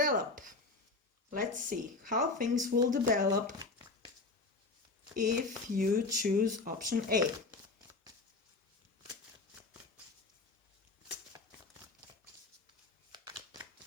Let's see how things will develop if you choose option A.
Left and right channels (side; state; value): right; quieter; 3.7 dB